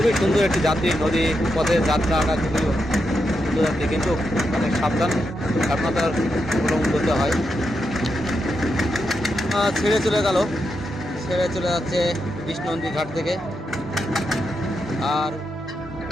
খুবই সুন্দর একটি যাত্রী নদী পথে যাত্রাটা খুবই সুন্দর যাত্রী, কিন্তু অনেক সাবধানতার অবলম্বন করতে হয়। ছেড়ে চলে যাচ্ছে বিষ্ণুনন্দী ঘাট থেকে। আর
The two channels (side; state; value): both; normal; correlation 0.84